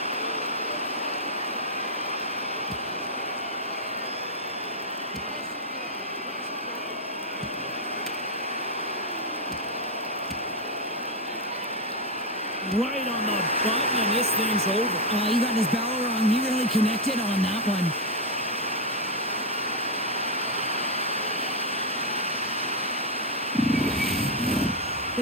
Right on the button, and this thing's over. Oh, you got his bell wrong. He really connected on that one. The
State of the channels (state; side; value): normal; both; correlation 0.03